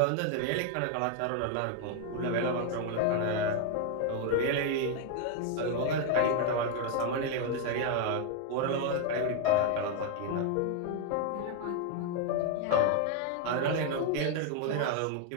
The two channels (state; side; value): different; both; correlation 0.01